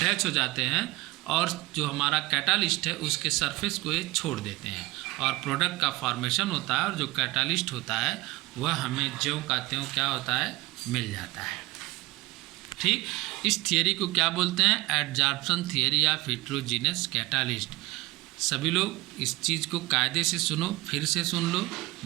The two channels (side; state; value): left; quieter; 20.3 dB